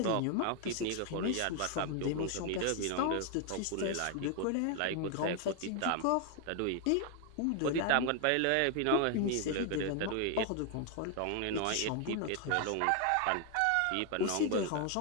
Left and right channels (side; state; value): both; different; correlation 0.01